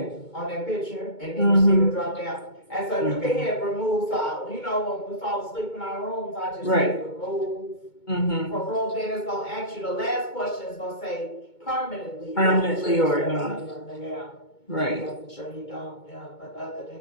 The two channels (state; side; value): late; right; 2.2 ms